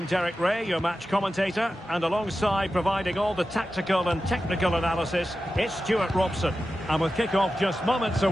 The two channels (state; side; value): normal; both; correlation 0.93